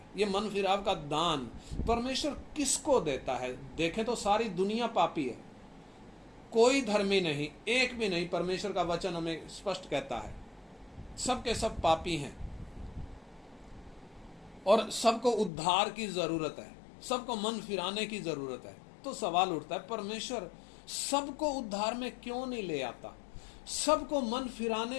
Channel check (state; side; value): drops out; right; at 15.5 s